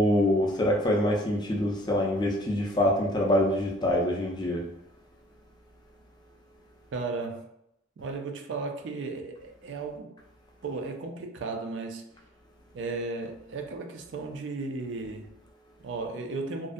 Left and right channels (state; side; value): normal; both; correlation 0.52